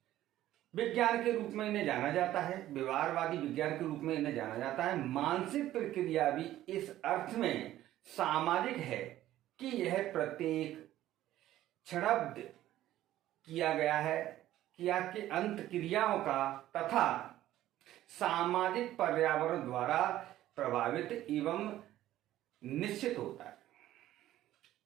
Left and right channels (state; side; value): quieter; left; 13.8 dB